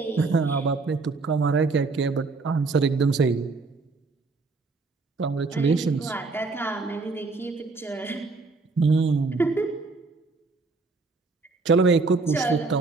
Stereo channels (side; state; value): left; quieter; 4.0 dB